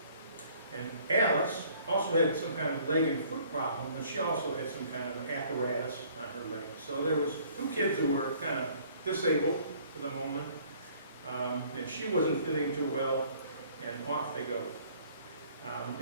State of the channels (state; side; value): inverted; both; correlation -0.57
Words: And Alice also had some kind of leg and foot problem, and she also had some kind of apparatus on her leg. So there was 2 kids who were kind of disabled for the moment, and she wasn't fitting too well, and off they go.